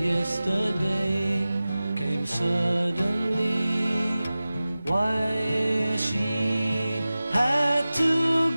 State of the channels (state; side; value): inverted; both; correlation -0.96